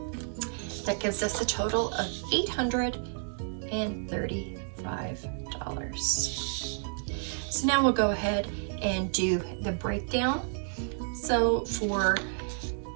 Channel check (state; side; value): silent; left; digital silence